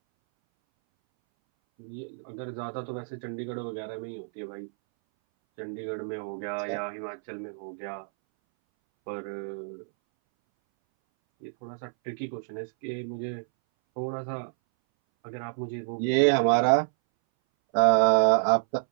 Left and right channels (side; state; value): left; silent; 59 dB below the other